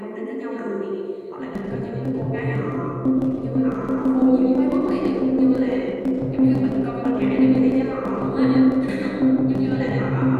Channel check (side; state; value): both; identical; correlation 1.00